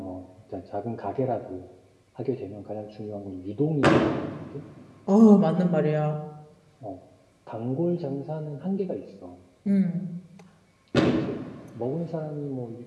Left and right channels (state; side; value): identical; both; correlation 1.00